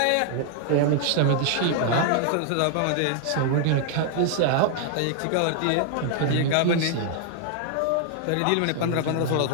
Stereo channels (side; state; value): both; different; correlation 0.00